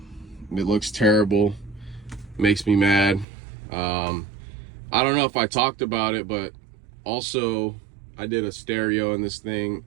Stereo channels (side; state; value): left; drops out; at 3.2 s